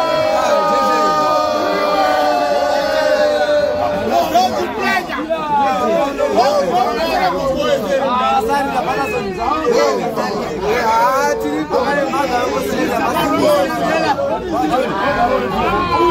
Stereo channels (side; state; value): both; identical; correlation 1.00